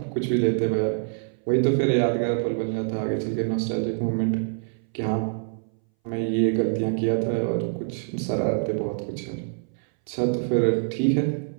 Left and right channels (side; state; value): left; silent; 60 dB below the other